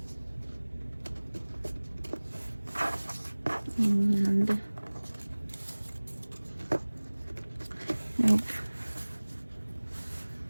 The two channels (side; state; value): both; inverted; correlation -1.00